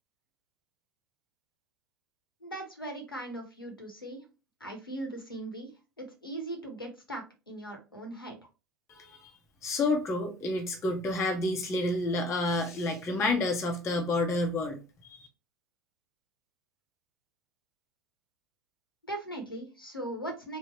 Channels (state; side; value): normal; both; correlation 0.50